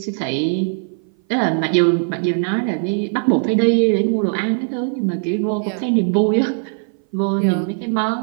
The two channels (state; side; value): silent; left; 58 dB below the other